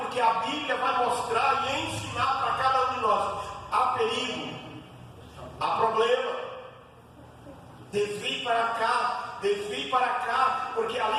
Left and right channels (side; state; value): both; identical; correlation 1.00